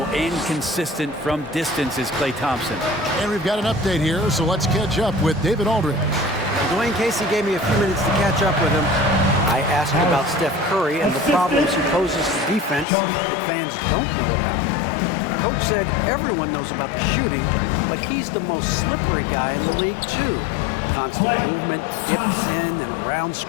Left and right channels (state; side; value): drops out; right; at 12.9 s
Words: and consistent from distance is Klay Thompson. And we've got an update here, so let's catch up with David Aldridge. Dwayne Casey gave me a few minutes to catch up with him. I asked about Steph Curry and the problems he poses to defense that fans don't know about. Coach said everyone knows about the shooting, but he's the most slippery guy in the league, too. Constant movement, dips in and around